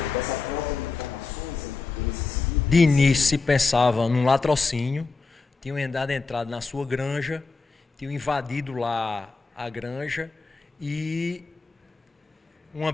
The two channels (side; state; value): right; quieter; 4.2 dB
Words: De início se pensava num latrocínio, tinham entrado na sua granja, tinham invadido lá a granja e uma